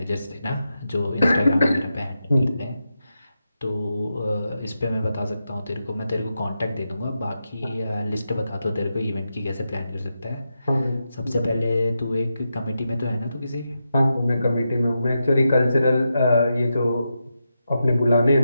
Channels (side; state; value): both; inverted; correlation -0.88